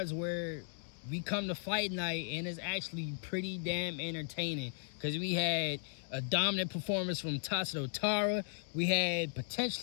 where we come to fight night and it's actually pretty damn entertaining because we had a dominant performance from Tatsuro Taira. We had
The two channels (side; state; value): right; silent; digital silence